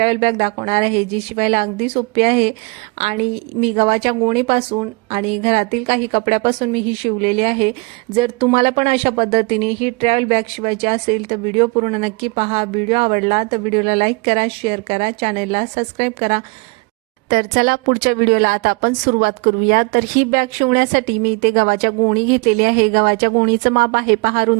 बॅग दाखवणार आहे, जी शिवायला अगदी सोपी आहे आणि मी गव्हाच्या गोणीपासून आणि घरातील काही कपड्यापासून मी ही शिवलेली आहे। जर तुम्हाला पण अशा पद्धतीने ही ट्रॅव्हल बॅग शिवायची असेल तर व्हिडिओ पूर्ण नक्की पहा। व्हिडिओ आवडला तर व्हिडिओला लाईक करा, शेअर करा, चॅनलला सबस्क्राईब करा। तर चला पुढच्या व्हिडिओला आता आपण सुरुवात करूया। तर ही बॅग शिवण्यासाठी मी इथे गव्हाच्या गोणी घेतलेली आहे। गव्हाच्या गोणीचं माप आहे पहा,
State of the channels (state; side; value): quieter; left; 29.3 dB